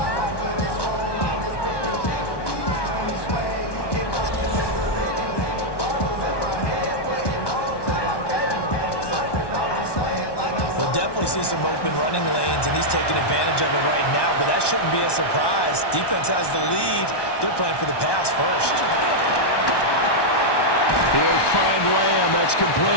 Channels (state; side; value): late; right; 1.1 ms